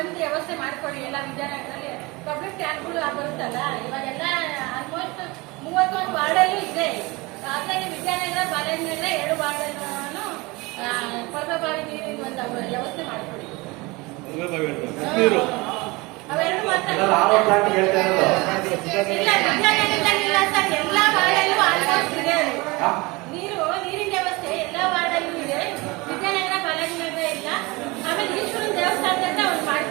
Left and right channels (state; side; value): quieter; left; 24.2 dB